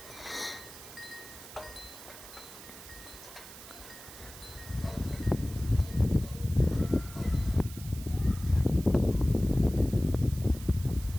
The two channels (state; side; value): noise; right; hiss, 16 dB below the sound